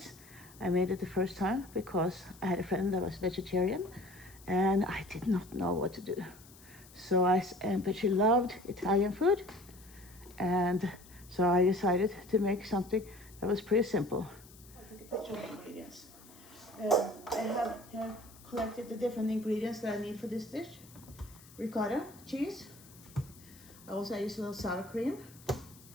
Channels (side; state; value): left; noise; hiss, 22 dB below the sound